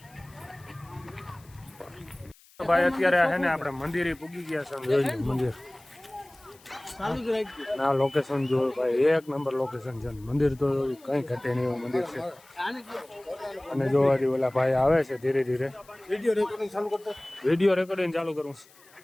ભાઈ અત્યારે હે ને આપણે મંદિરે પૂગી ગયા છે. જોઈ લો મંદિર ના લોકેશન જો ભાઈ એક નંબર લોકેશન છે. મંદિર તો કઈ ઘટે નહીં એવું મંદિર છે. અને જો હજી ઓલા ભાઈ આવે છે ધીરે ધીરે. વિડીયો રેકોર્ડિંગ ચાલુ કરું છું.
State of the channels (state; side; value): noise; left; hiss, 27 dB below the sound